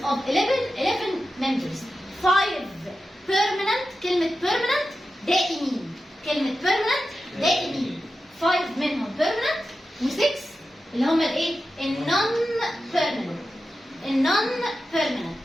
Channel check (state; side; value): normal; both; correlation 0.92